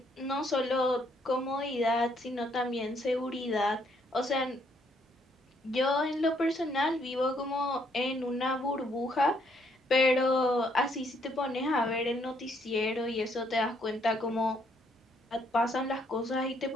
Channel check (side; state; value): both; normal; correlation 0.70